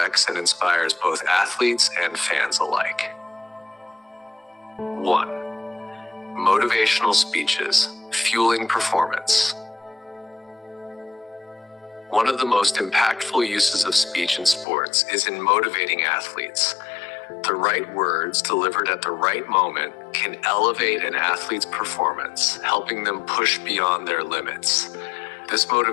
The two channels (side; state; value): right; drops out; at 14.7 s